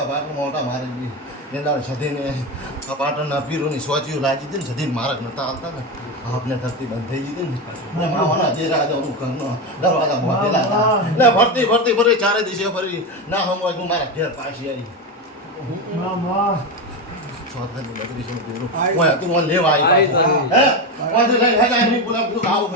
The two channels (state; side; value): normal; both; correlation 0.15